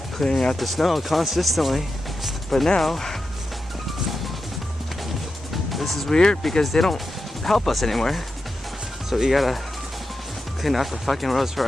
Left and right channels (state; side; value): normal; both; correlation 0.89